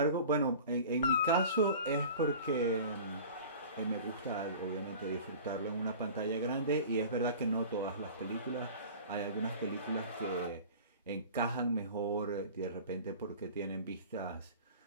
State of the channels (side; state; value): both; inverted; correlation -0.40